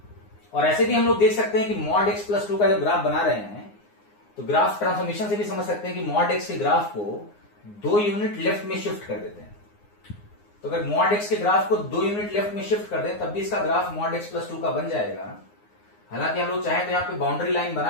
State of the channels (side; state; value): right; late; 9.7 ms